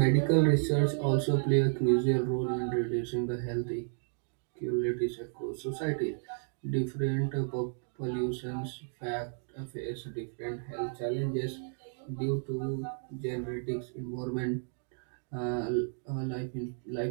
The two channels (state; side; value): silent; left; digital silence